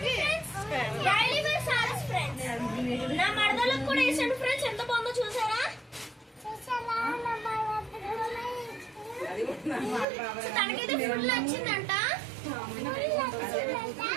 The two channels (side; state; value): left; drops out; at 10.1 s